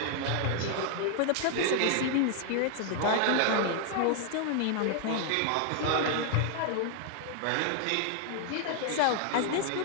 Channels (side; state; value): both; different; correlation 0.00